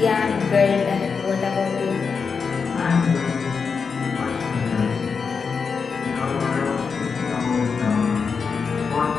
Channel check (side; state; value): right; quieter; 5.5 dB